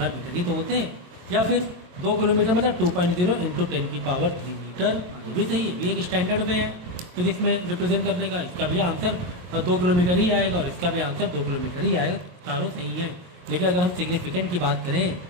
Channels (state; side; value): late; left; 22 ms